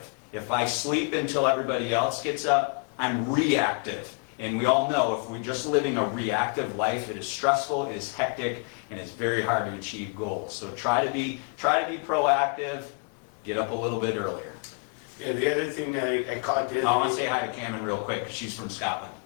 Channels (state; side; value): quieter; right; 37.8 dB